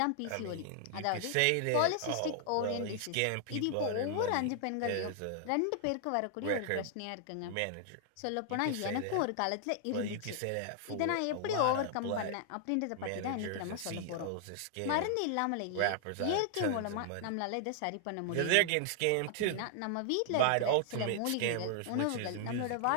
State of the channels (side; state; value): both; different; correlation 0.00